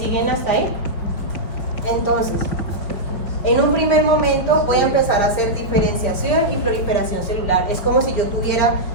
hasta ahí? Entonces, En un primer momento voy a empezar a hacer diferenciación y proliferación celular. Es como si yo tuviera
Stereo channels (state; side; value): late; right; 5.5 ms